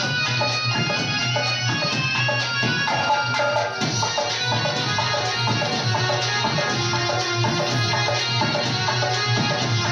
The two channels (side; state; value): both; identical; correlation 1.00